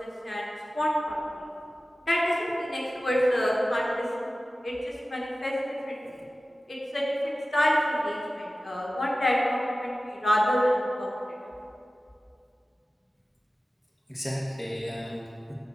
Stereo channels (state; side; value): normal; both; correlation 0.96